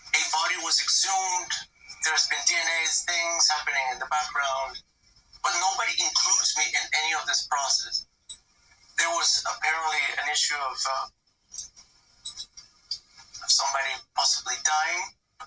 a body was exhumed. There's been DNA things happening in the background, but nobody includes me in any of this process. There was apparently an issue of somebody possibly dying.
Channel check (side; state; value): both; identical; correlation 1.00